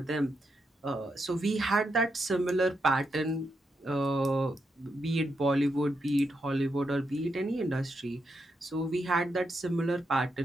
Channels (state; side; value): normal; both; correlation 0.82